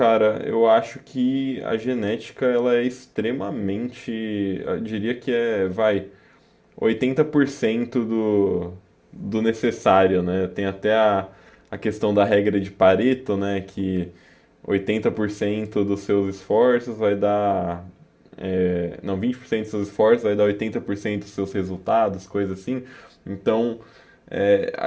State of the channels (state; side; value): identical; both; correlation 1.00